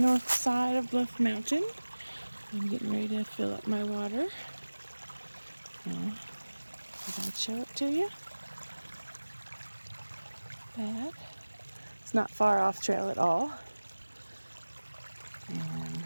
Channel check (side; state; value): both; inverted; correlation -1.00